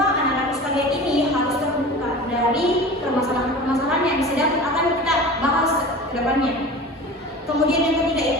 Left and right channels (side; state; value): both; normal; correlation 0.35